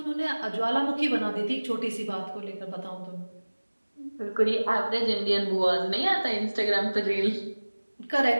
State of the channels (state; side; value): inverted; both; correlation -1.00